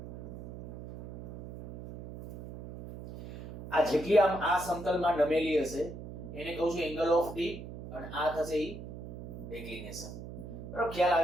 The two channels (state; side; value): noise; right; hum, 11 dB below the sound